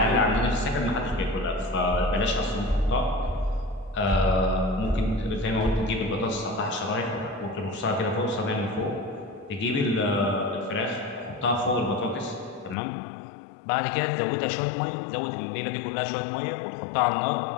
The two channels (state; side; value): drops out; right; at 12.8 s